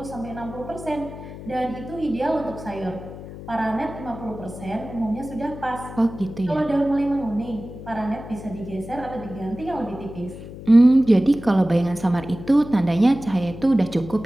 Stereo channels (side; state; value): left; noise; hum, 13 dB below the sound